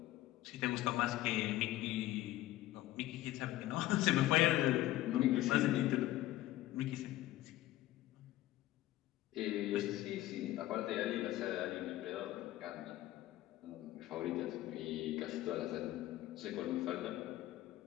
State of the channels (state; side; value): quieter; right; 15.7 dB